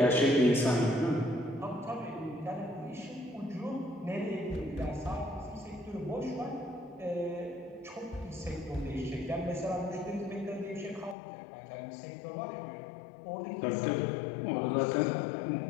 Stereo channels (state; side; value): drops out; right; at 11.2 s